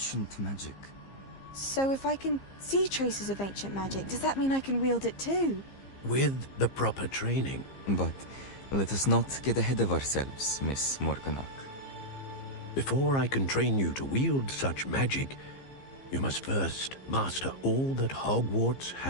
magic. So if I can see traces of ancient magic, does that mean I can wield it too? With the proper training. But let us not get ahead of ourselves, Miss Morganach. Before I can train you to wield such magic, you must first master all that Hogwarts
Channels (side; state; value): right; late; 15 ms